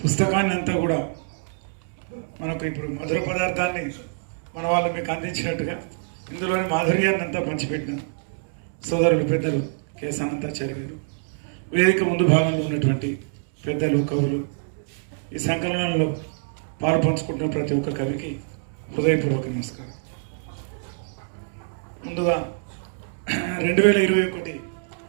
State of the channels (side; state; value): left; silent; digital silence